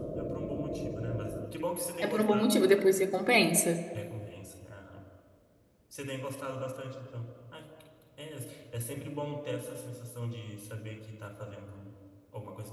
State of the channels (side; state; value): both; identical; correlation 1.00